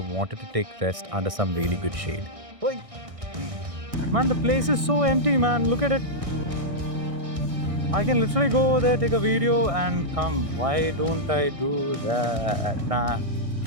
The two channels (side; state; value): left; late; 1.6 ms